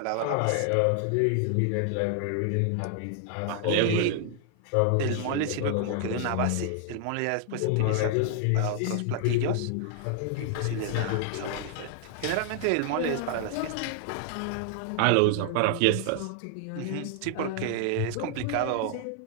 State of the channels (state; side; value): different; both; correlation 0.00